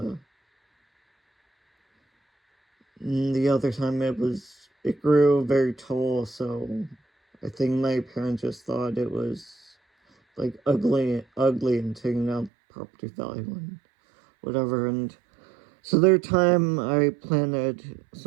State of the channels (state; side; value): drops out; left; at 12.5 s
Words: the other time it grew very tall, so I think my parents just thought it was like ugly and taking down property value and whatever. And so there time I planted